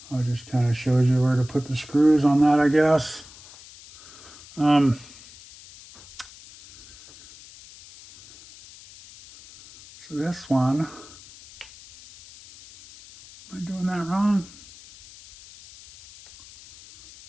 Oh, it just kind of shows you where to put the screws on that, I guess. So this one, am I doing that wrong?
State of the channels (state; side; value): noise; left; hiss, 20 dB below the sound